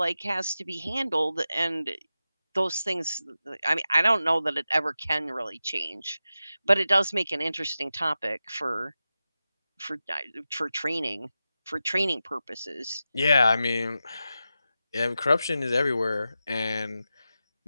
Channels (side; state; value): both; inverted; correlation -0.92